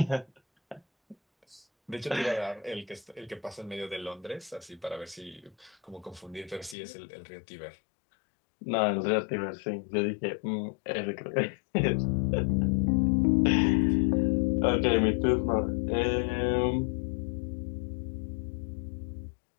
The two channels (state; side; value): drops out; right; at 6.8 s